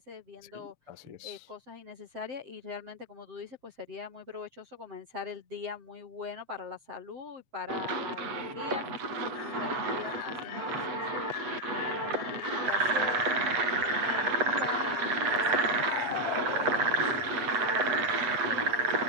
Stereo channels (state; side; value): late; left; 8.2 ms